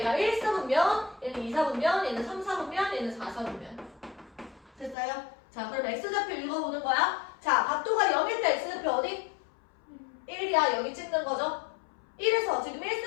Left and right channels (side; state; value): right; drops out; at 5.0 s